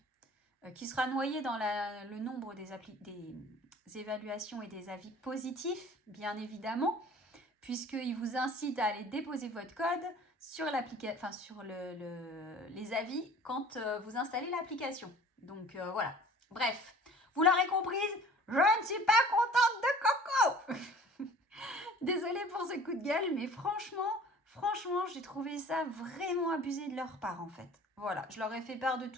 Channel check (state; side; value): normal; both; correlation 0.47